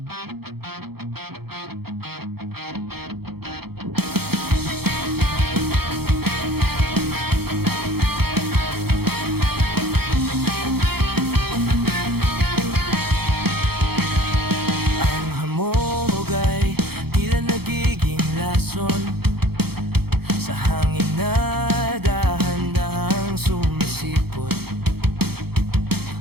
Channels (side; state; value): left; late; 0.96 ms